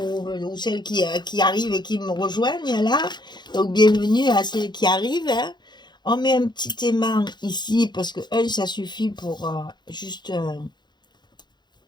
celles qui arrivent et qui me rejoignent là. Donc bienvenue à celles qui arrivent. Hein. On met un petit aimant ici parce que ça suffit pour juste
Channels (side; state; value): right; late; 0.21 ms